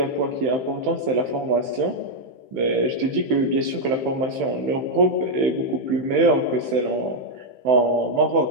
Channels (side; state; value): left; late; 15 ms